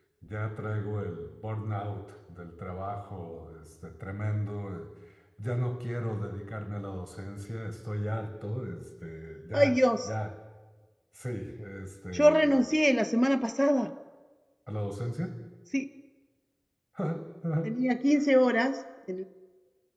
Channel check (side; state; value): both; identical; correlation 1.00